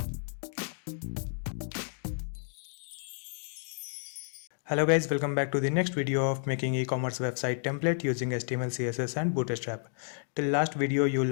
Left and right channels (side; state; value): right; silent; digital silence